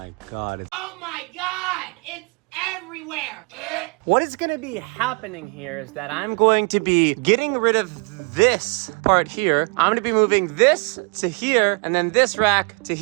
God. Oh my God, it's everywhere. What is gonna be happening here is that I'm going to be getting rid of this part here. I'm gonna be moving this to here and then this rack to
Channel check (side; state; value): left; quieter; 33.8 dB